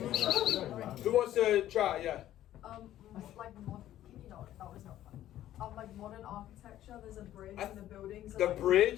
Who wants to try? Yeah. Like that was not fun. Like modern architecture, there's a bridge and the buildings. The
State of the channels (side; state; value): right; quieter; 12.9 dB